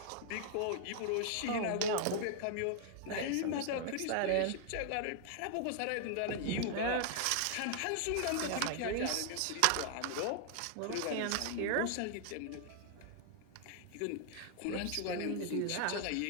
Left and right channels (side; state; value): both; different; correlation 0.00